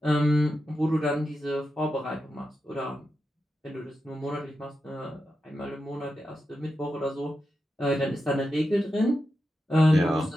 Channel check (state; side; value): normal; both; correlation 0.88